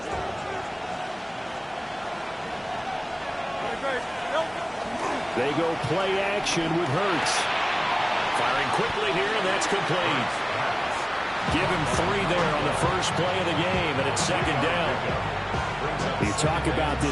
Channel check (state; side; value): identical; both; correlation 1.00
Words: They go play action with Hurts. Firing quickly here, and that's complete. Give him 3 there on the first play of the game, and it's second down. You talk about